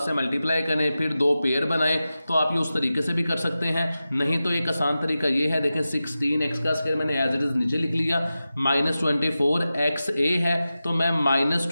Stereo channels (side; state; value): both; inverted; correlation -0.94